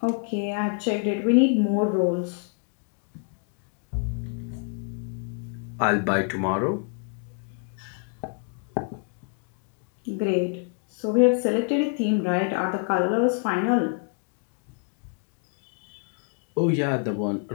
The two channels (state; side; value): quieter; right; 37.4 dB